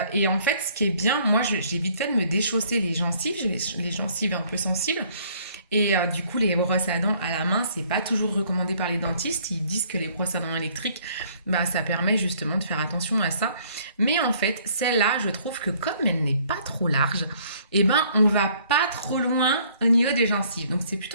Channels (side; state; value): both; inverted; correlation -0.61